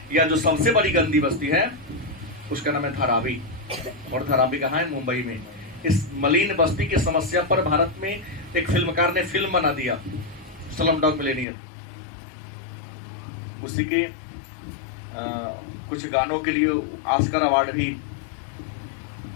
या जो सबसे बड़ी गंदी बस्ती है उसका नाम है धारावी, और धारावी कहाँ है, मुंबई में। इस मलिन बस्ती की समस्या पर भारत में एक फिल्मकार ने फिल्म बना दिया, स्लमडॉग मिलियनेयर। उसी के कुछ गानों के लिए ऑस्कर अवार्ड भी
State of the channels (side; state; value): right; drops out; at 11.5 s